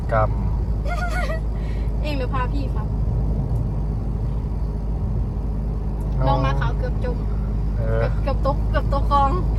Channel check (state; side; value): identical; both; correlation 1.00